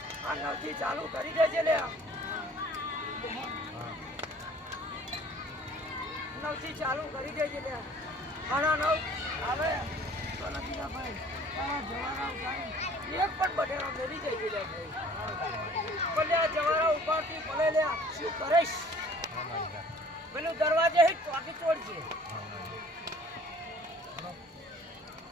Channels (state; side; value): normal; both; correlation 0.52